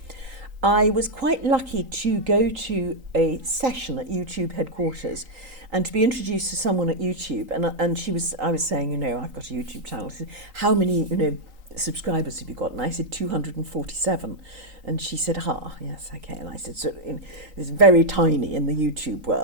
I was quite lucky to go to a session at YouTube headquarters and to be introduced to someone at YouTube. And I was saying, I've got a YouTube channel. How many, subscribers have you got? And I said 247. And she said, yes, okay. And I said, so it's very tiny in the YouTube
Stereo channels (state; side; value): late; left; 3.8 ms